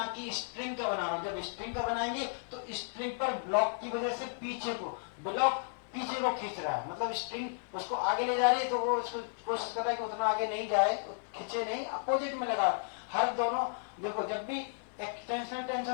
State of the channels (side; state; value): right; silent; 55 dB below the other